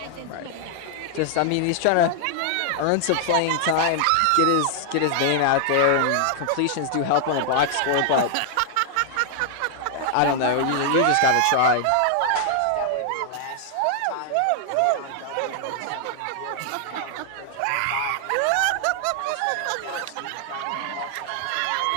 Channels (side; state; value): both; different; correlation 0.00